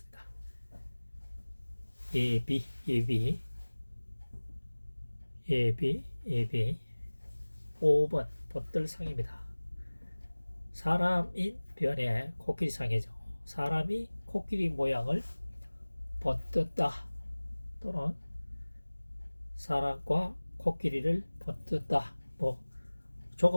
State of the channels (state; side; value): inverted; both; correlation -1.00